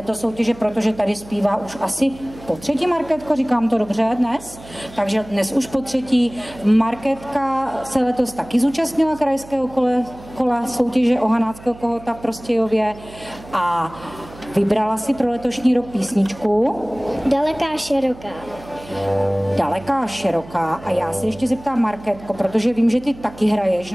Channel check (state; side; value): noise; right; hum, 18 dB below the sound